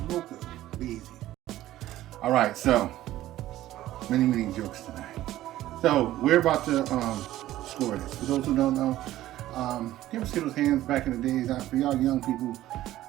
Be easy. All right, so many jokes tonight. So we're about to score this. For those who don't know, you ever see those hands back in the days? For y'all young people,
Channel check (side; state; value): left; quieter; 14.5 dB